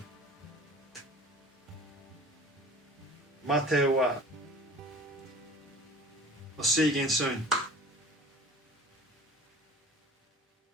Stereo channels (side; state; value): both; normal; correlation 0.42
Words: Mewe. I'll see you again soon.